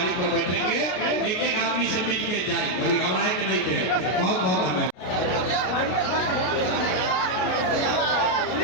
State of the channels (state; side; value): late; right; 33 ms